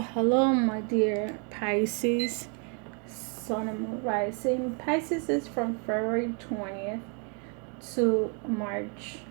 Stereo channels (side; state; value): left; quieter; 38.5 dB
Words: my dear Pisces, Sun and Moon Rising. Pisces is from February 20th to March